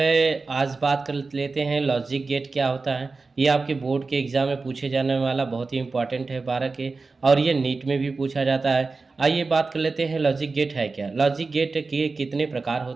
आज बात कर लेते हैं लॉजिक गेट क्या होता है। ये आपके बोर्ड के एग्ज़ाम में पूछे जाने वाला बहुत ही इंपॉर्टेंट है 12 के, और ये नीट में भी पूछा जाता है। आइए बात कर लेते हैं लॉजिक गेट है क्या। लॉजिक गेट के कितने प्रकार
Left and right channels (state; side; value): quieter; left; 4.0 dB